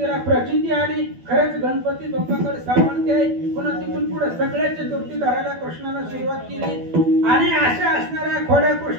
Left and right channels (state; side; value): late; left; 12 ms